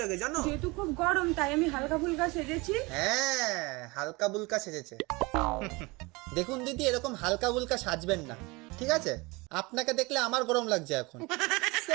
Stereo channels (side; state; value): left; quieter; 24.9 dB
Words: লাগে, জানো? যেহেতু খুব গরম তাই আমি হালকা ফুলকা সেজেছি। হ্যাঁ, হালকা বুলকা সেজেছে। দেখুন দিদি, এরকম হালকা বুলকা সাজবেন না, ঠিক আছে? আপনাকে দেখলে আমার গরম লাগছে এখন।